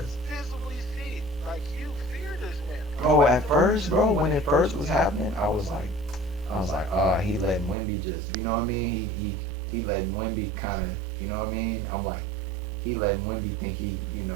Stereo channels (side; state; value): left; drops out; at 7.8 s